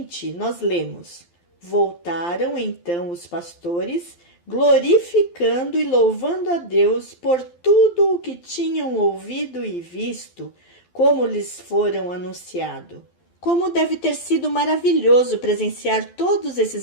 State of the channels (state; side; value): late; right; 12 ms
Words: nós lemos: Voltaram então os pastores, glorificando e louvando a Deus por tudo o que tinham ouvido e visto, como lhes foram anunciado. Como deve ter sido maravilhoso presenciar todos